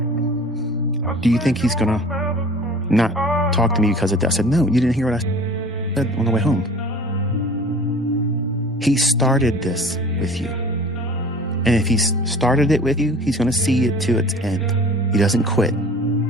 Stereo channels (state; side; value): normal; both; correlation 0.44